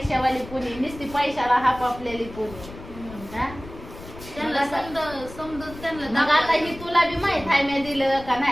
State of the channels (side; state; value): left; noise; rumble, 15 dB below the sound